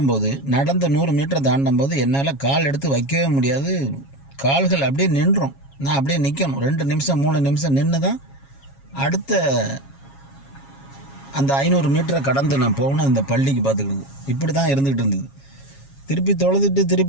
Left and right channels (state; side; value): late; right; 7.3 ms